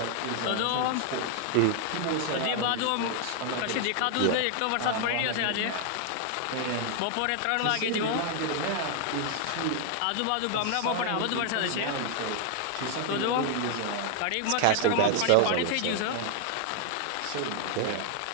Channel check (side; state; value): both; different; correlation 0.00